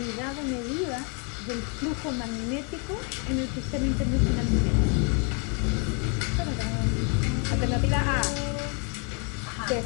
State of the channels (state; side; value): quieter; right; 36.8 dB